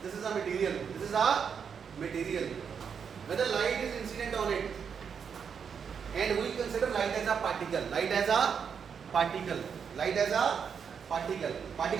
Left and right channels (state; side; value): quieter; left; 6.8 dB